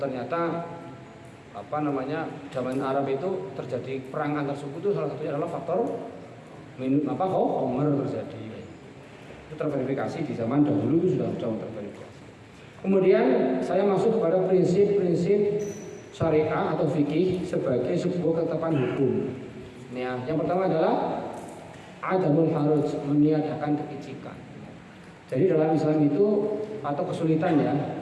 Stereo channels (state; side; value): identical; both; correlation 1.00